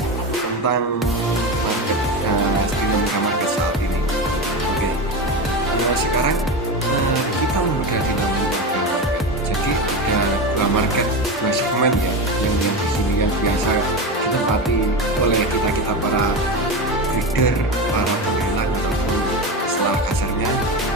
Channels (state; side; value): normal; both; correlation 0.20